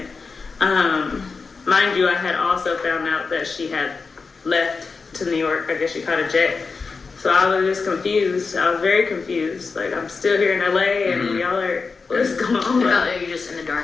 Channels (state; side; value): quieter; right; 4.6 dB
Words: Mind you, I had also found out that she had left to New York. I guess she caught a jet. So I was just confused. I was very confused. Like, I'm still here in LA and y'all are, what's going on? You're just in the